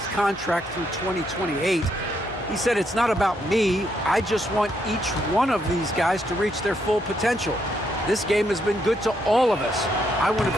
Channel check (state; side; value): normal; both; correlation 0.76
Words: contract through 2028. He said, "It's not about me. I just want each one of these guys to reach their full potential. This game has been good to all of us. I want